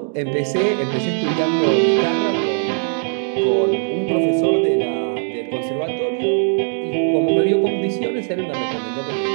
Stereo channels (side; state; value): left; silent; 55 dB below the other